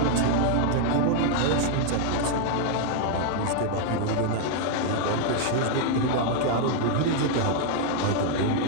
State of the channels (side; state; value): both; different; correlation 0.00